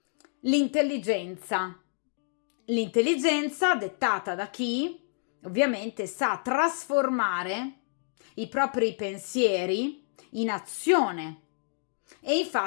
L'intelligenza dettata da chi ovviamente sa trasformare i propri pensieri in azione e in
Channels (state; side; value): silent; right; digital silence